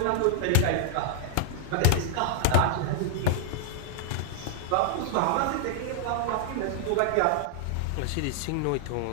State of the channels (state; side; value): different; both; correlation -0.01